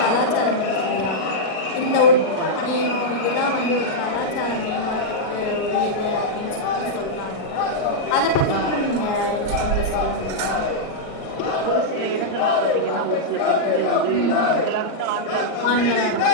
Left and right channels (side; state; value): right; late; 38 ms